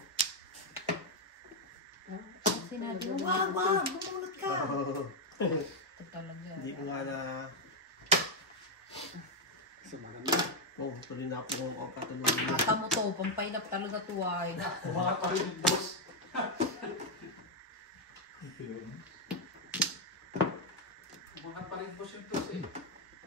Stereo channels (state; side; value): normal; both; correlation 0.01